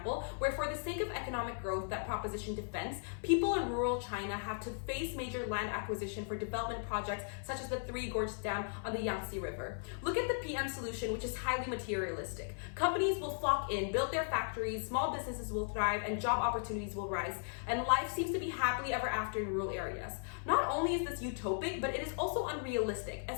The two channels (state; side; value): silent; right; 53 dB below the other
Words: where for the sake of economic growth that proposition defends, people in rural China have to face major land acquisition for development projects such as the Three Gorges Dam on the Yangtze River. Look at the PM solution, which is highly materialistic. Companies will flock in, build their factories, small businesses will thrive, and job opportunities will rise, and life seems to be happily ever after in rural areas. Not only is this utopic, but it is also unrealistic,